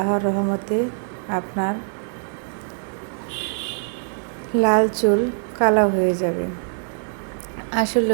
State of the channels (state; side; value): silent; left; 61 dB below the other